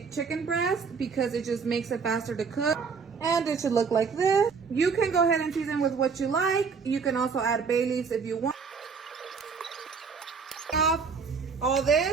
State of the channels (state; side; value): quieter; left; 5.4 dB